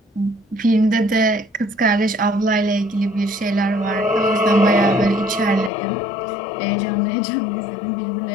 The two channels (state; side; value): drops out; right; at 5.7 s